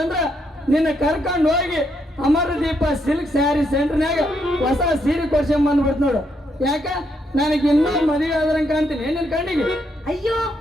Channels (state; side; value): normal; both; correlation 0.77